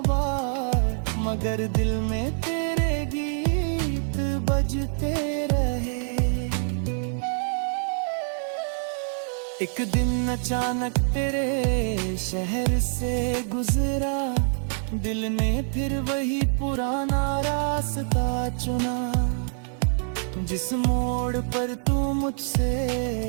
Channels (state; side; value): silent; left; 61 dB below the other